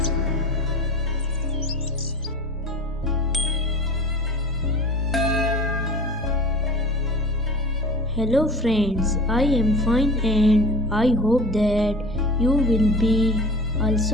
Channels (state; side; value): normal; both; correlation 0.37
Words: friends, I am fine and I hope that you will be